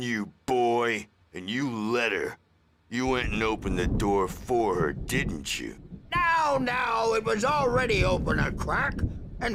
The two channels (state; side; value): identical; both; correlation 1.00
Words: you, boy, and you let her. You went and opened the door for her, didn't you? Now, it was already open a crack. And